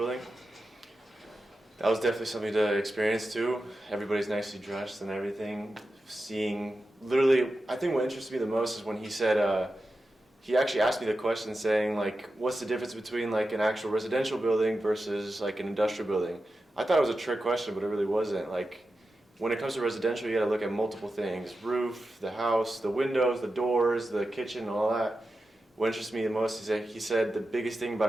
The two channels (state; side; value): normal; both; correlation 0.91